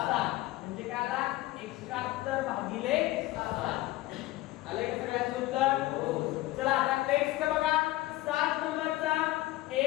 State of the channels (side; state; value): right; quieter; 17.7 dB